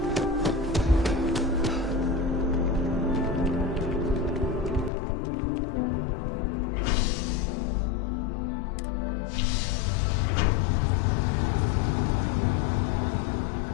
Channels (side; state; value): right; drops out; at 4.9 s